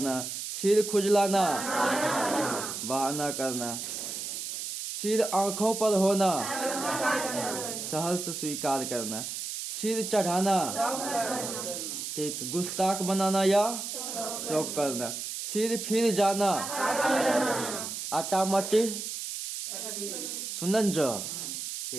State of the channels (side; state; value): right; noise; hiss, 5 dB below the sound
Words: सिर खुजलाना, बहाना करना, सिर आंखों पर होना, सहर्ष स्वीकार करना, सिर चढ़ाना, ठीक, गुस्ताख बनाना या शौक करना, सिर फिर जाना, आटा मट्टी सुनन जो,